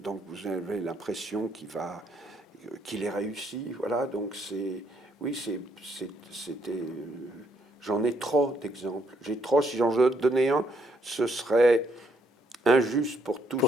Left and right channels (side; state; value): both; normal; correlation 0.72